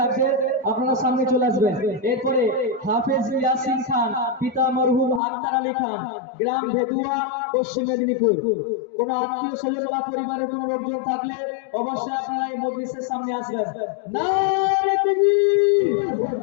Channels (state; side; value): drops out; right; at 5.2 s